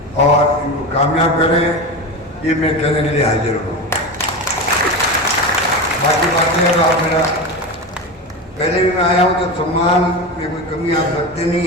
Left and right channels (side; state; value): both; normal; correlation 0.23